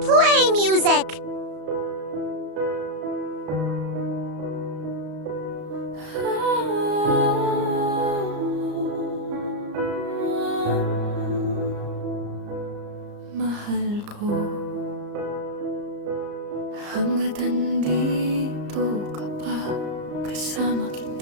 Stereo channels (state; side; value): late; left; 34 ms